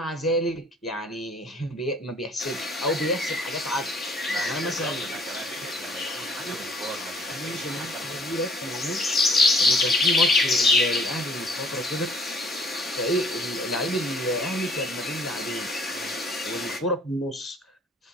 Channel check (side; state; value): both; normal; correlation 0.58